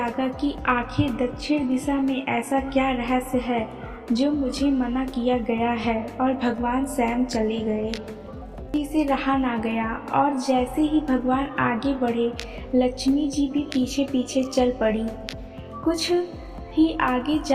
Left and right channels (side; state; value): both; identical; correlation 1.00